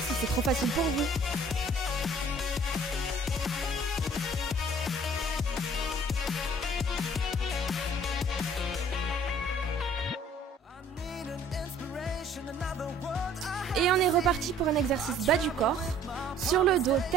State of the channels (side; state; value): both; normal; correlation 0.55